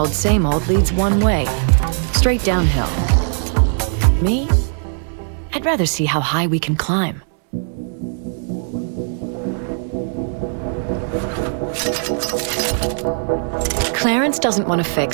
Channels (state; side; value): silent; left; digital silence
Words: leads one way. Straight downhill. Me? I'd rather see how high we can climb. Clarence doesn't want to